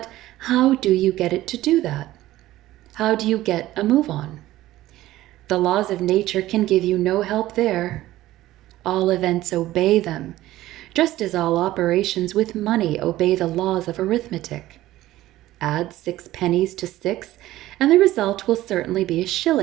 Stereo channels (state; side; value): quieter; left; 15.5 dB